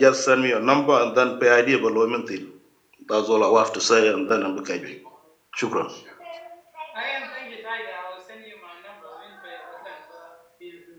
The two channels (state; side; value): identical; both; correlation 1.00